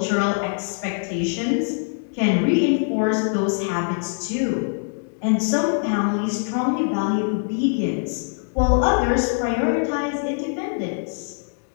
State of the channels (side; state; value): right; silent; digital silence